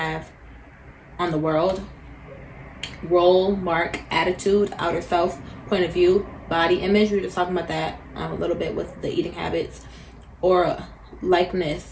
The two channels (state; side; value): identical; both; correlation 1.00